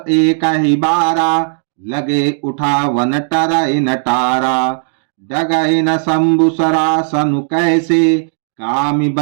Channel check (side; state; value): left; silent; digital silence